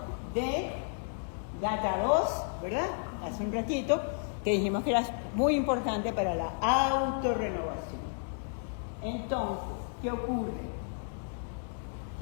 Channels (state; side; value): silent; right; digital silence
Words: de GATA2, ¿verdad? Hace un ratito, que dijimos que era muy importante para la autorrenovación. Entonces, ¿qué ocurre?